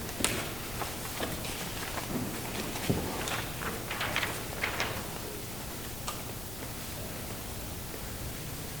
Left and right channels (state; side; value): noise; left; rumble, 7 dB below the sound